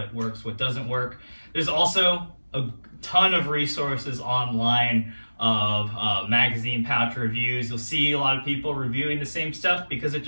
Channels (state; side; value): inverted; both; correlation -1.00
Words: works, what doesn't work. There's also a ton of resources online of magazine pouch reviews. You'll see a lot of people reviewing the same stuff because it